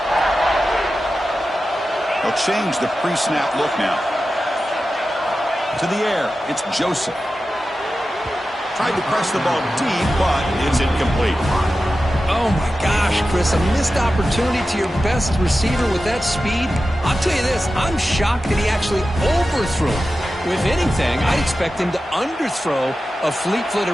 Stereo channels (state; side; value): normal; both; correlation 0.93